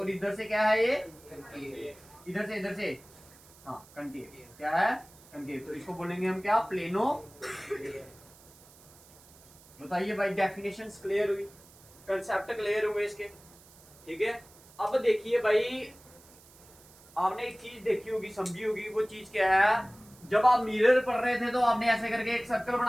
इधर से क्या है? ये इधर से हाँ कनकेव। क्या है? कनकेव। तो इसको बोलेंगे हम क्या? प्लेनो। बताइए भाई, डेफिनेशंस क्लियर हुई, कंसेप्ट क्लियर हुए इसके, ठीक है। अब देखिए भाई, आपने एक चीज देखी होगी, समझी होगी, वो चीज क्या है? जब आप मिरर पढ़ रहे थे तो आपने ऐसे करके एक सर्कल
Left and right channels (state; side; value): noise; right; hiss, 24 dB below the sound